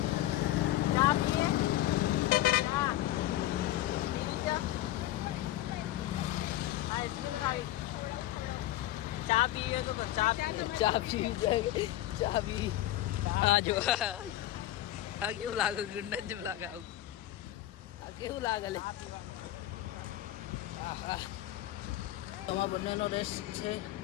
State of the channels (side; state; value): right; quieter; 14.4 dB